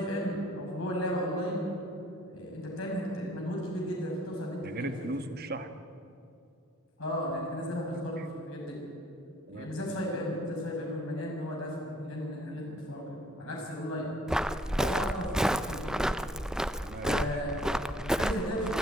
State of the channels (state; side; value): normal; both; correlation 0.58